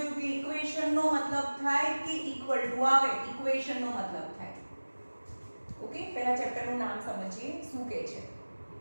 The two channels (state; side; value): inverted; both; correlation -1.00